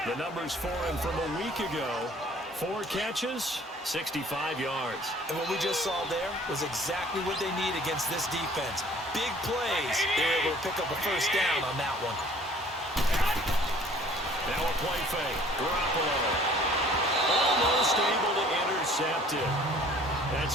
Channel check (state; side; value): normal; both; correlation 0.54